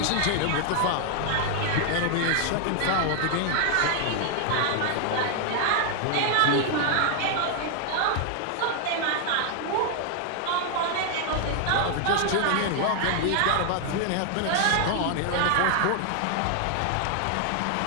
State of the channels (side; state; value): both; different; correlation 0.00